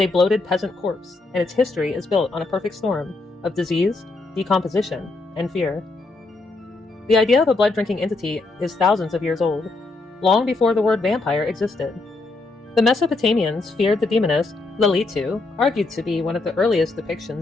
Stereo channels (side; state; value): right; quieter; 3.4 dB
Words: a bloated peasant corpse, and its history is built on a perfect storm of disease, decomposition, and fear. The idea of a blood-drinking entity is thousands of years old, long before the word vampire existed. The Mesopotamians feared the demoness Lilitu, argued to be one of the earliest